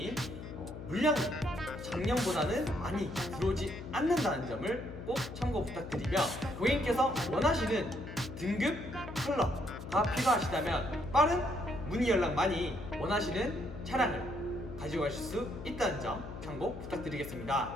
물량이 작년보다는 많이 들어오지 않는다는 점을 꼭 참고 부탁드리며, 고객님께서 원하시는 등급, 컬러가 필요하시다면 빠른 문의 연락 많이 원하시는 차량을 가지고 가실 수 있다는 점 참고 부탁드리겠습니다.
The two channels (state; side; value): noise; left; hum, 10 dB below the sound